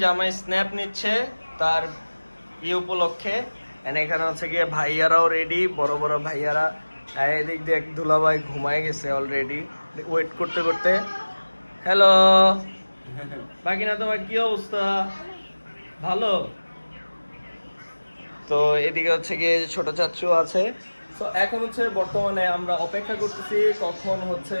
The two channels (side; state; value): both; inverted; correlation -1.00